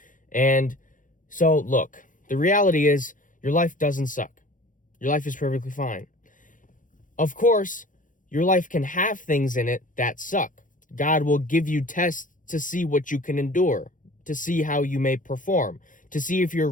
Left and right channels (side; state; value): right; late; 0.38 ms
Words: And so, look, the reality is your life doesn't suck. Your life is perfectly fine. Of course, your life can have things in it that suck. God will give you tests to see what you can endure, to see how you may perform, to see if you're